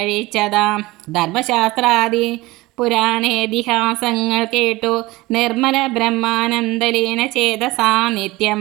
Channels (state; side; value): quieter; left; 20.3 dB